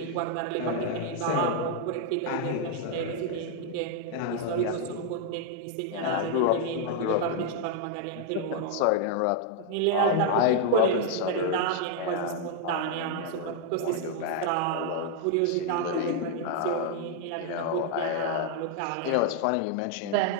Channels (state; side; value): different; both; correlation 0.00